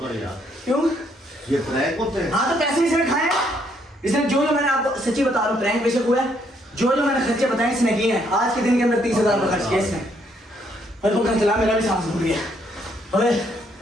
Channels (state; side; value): normal; both; correlation 0.70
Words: यार, क्यों? ये प्रैंक होते हैं। हाँ तो पैसे इसने खाए, इसने जो मैंने आपको सच्ची बता रहा हूँ, प्रैंक बेशक हुआ है, जो मैंने खर्चे बताए इसने किए हैं। आज के दिन के अंदर 30,000 रुपये खर्च किए इसने, और वो चला मेरा भी सांस फूट गया। अबे